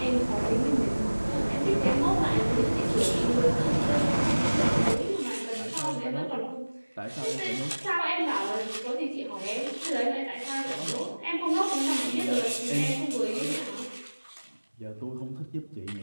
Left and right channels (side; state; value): both; inverted; correlation -1.00